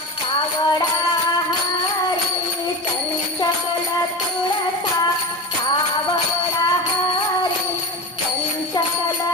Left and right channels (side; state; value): both; normal; correlation 0.27